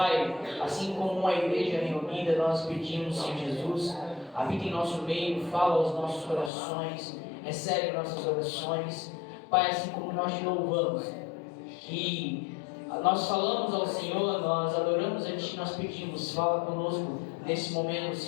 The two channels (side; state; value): right; drops out; at 6.5 s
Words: assim como uma igreja reunida, nós pedimos, Senhor Jesus, habita em nosso meio, fala aos nossos corações, recebe nossas orações. Pai, assim como nós te louvamos, que nós falamos ao Senhor, nós adoramos a Ti, nós pedimos, fala conosco nesse momento,